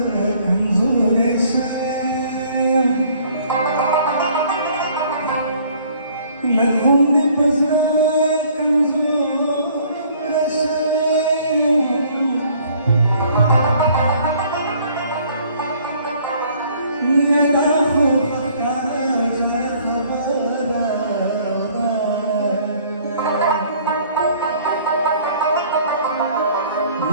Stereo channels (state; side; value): inverted; both; correlation -0.58